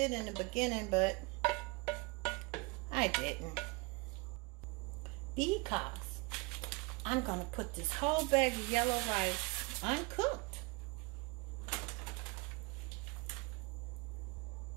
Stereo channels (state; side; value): quieter; left; 27.2 dB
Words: in the beginning, but I didn't. Because I'm going to put this whole bag of yellow rice uncooked.